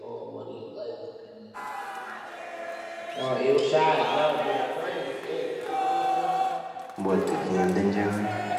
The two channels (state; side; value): identical; both; correlation 1.00